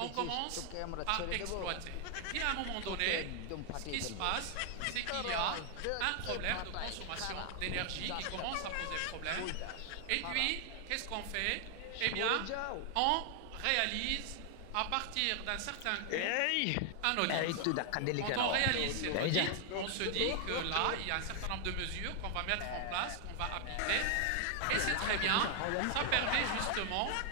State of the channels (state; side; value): different; both; correlation 0.00